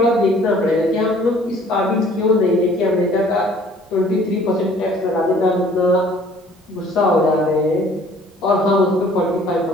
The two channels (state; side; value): normal; both; correlation 0.54